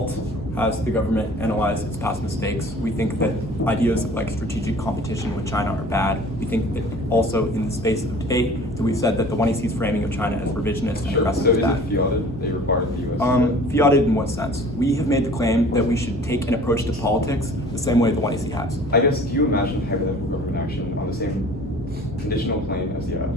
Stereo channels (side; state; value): both; normal; correlation 0.47